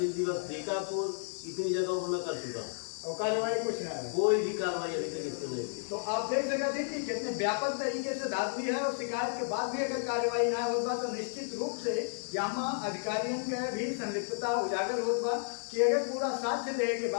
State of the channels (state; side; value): silent; right; 56 dB below the other